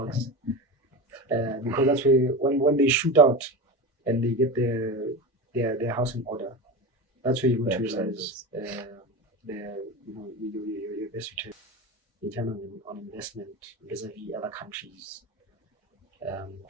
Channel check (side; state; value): both; normal; correlation 0.24